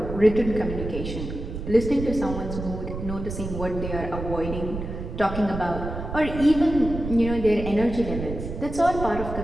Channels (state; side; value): noise; right; rumble, 7 dB below the sound